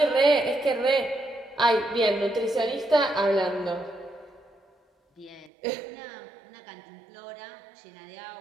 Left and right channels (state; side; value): drops out; left; at 5.5 s